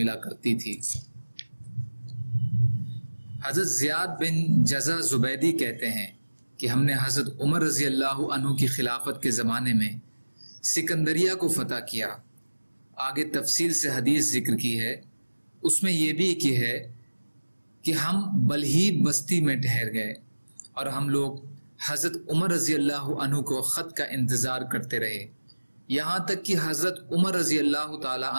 کرتی تھی۔ حضرت زیاد بن جزا زبیدی کہتے ہیں کہ ہم نے حضرت عمر رضی اللہ عنہ کی خلافت کے زمانے میں سکندریہ کو فتح کیا۔ آگے تفصیل سے حدیث ذکر کی ہے، اس میں یہ بھی کی ہے کہ ہم بلہیب بستی میں ٹھہر گئے اور ہم لوگ حضرت عمر رضی اللہ عنہ کو خط کا انتظار کرتے رہے، یہاں تک کہ حضرت عمر رضی اللہ تعالی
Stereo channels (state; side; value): inverted; both; correlation -1.00